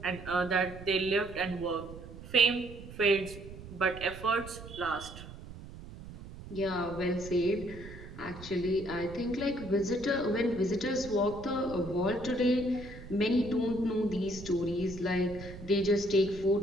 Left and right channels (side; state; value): right; noise; rumble, 14 dB below the sound